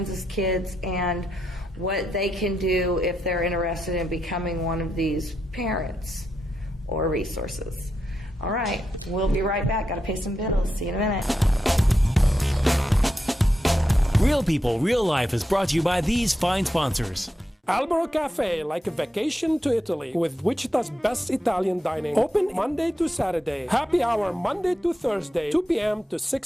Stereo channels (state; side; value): normal; both; correlation 0.85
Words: Kids and what they can do if they're interested in becoming one of these parents or resources. All right, we'll be right back. Got to pay some bills. See you in a minute. Real People, Real Life is brought to you by these fine sponsors. Albero Cafe, like a vacation to Italy, with Wichita's best Italian dining. Open Monday to Saturday. Happy hour Monday to Thursday, 2 p.m. to